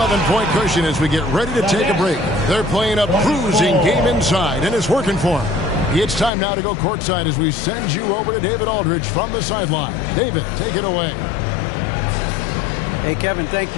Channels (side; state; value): right; drops out; at 6.3 s